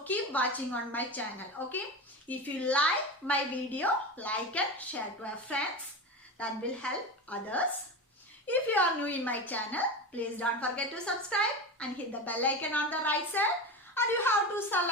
keep watching on my channel. Okay. If you like my video, like and share to your friends. That will help others. If you are new in my channel, please don't forget to subscribe and hit the bell icon on the right side. And you have to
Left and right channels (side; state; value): both; normal; correlation 0.24